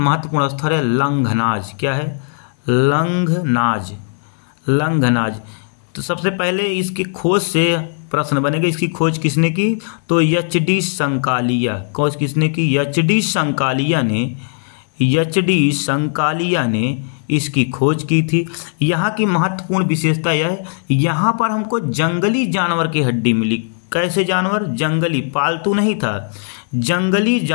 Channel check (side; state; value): right; silent; 59 dB below the other